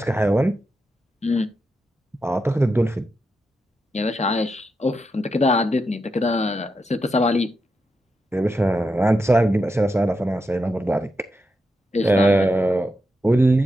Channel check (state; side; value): normal; both; correlation 0.86